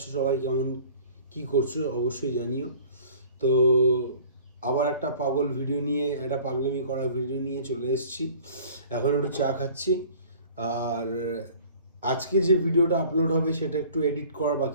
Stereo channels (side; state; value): both; inverted; correlation -0.49